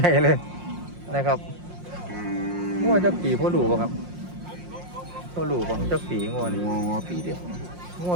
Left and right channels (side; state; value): left; late; 5.6 ms